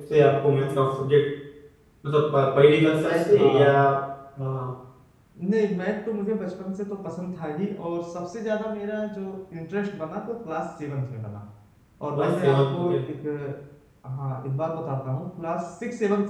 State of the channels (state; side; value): identical; both; correlation 1.00